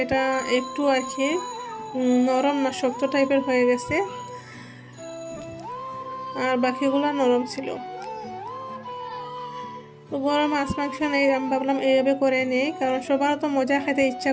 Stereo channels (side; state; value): both; identical; correlation 1.00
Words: একটু আর কি নরম না, শক্ত টাইপের হয়ে গেছে, আর বাকিগুলো নরম ছিল। তো গরম মাছ মাংস নেই, আমি ভাবলাম এইভাবে করে নেই, কারণ সবারও তো মজা খেতে ইচ্ছা